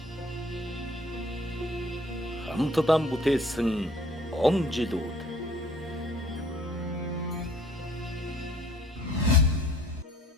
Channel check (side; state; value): both; normal; correlation 0.57